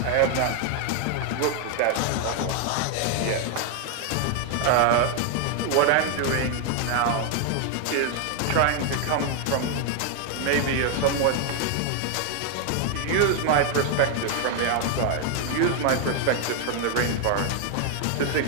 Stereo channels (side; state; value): both; different; correlation 0.00